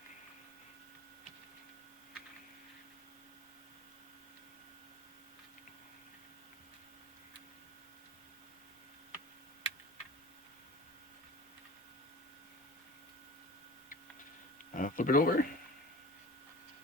Flip it over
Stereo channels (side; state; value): both; normal; correlation 0.37